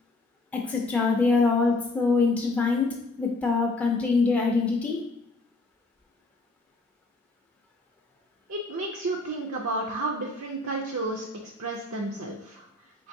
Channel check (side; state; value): right; quieter; 3.0 dB